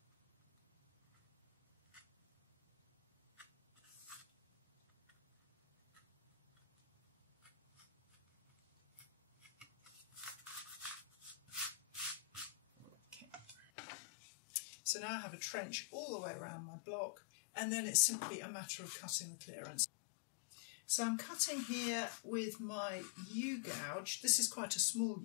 So now I have a trench all the way around my block, and then it's simply a matter of cutting the clearance. So I'm cutting here with my U-gouge. This is quite a small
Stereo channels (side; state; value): right; drops out; at 13.7 s